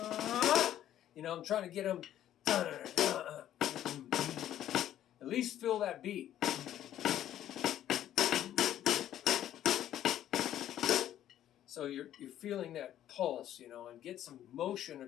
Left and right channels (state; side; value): quieter; right; 11.7 dB